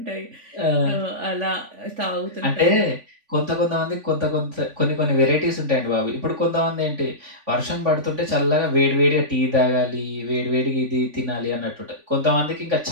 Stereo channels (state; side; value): late; left; 3.5 ms